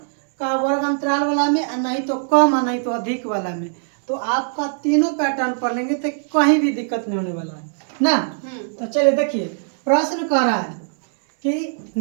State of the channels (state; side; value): silent; left; digital silence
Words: का वर्ग अंतराल वाला में, और नहीं तो कम, और नहीं तो अधिक वाला में। तो आपका तीनों पैटर्न पढ़ लेंगे तो कहीं भी दिक्कत नहीं होने वाला है ना। तो चलिए देखिए, प्रश्न कह रहा है कि